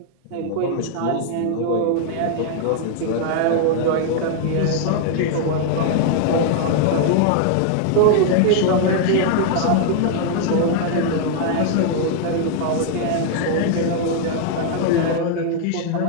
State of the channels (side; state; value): both; different; correlation 0.00